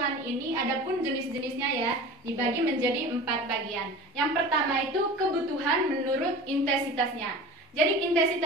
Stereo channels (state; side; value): normal; both; correlation 0.36